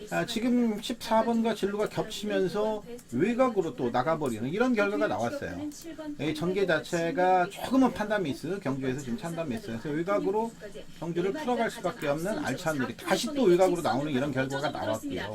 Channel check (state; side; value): identical; both; correlation 1.00